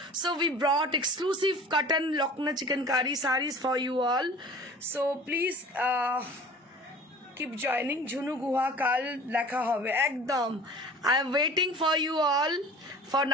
So we brought exclusive cotton Lucknow chikankari sarees for you all. So please keep joining. Jhunu Guha কাল দেখা হবে একদম। I am waiting for you all for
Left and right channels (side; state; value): both; normal; correlation 0.43